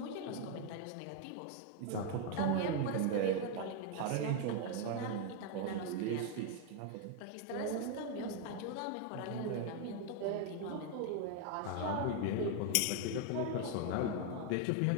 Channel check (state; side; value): different; both; correlation 0.01